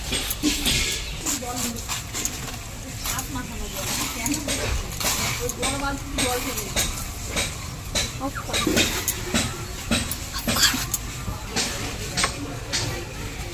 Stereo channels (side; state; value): both; identical; correlation 1.00